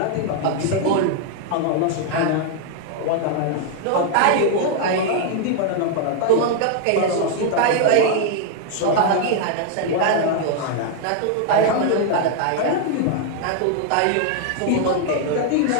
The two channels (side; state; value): both; different; correlation 0.00